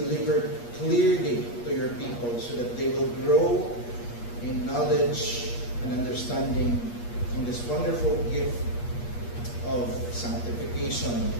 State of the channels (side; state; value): right; late; 8.4 ms